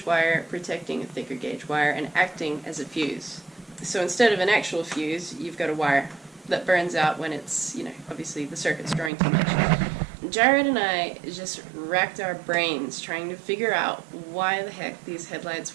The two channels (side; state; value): left; drops out; at 9.1 s